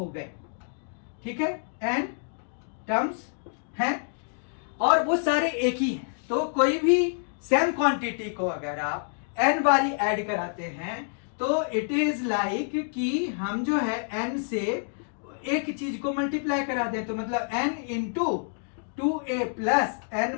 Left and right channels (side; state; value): right; silent; digital silence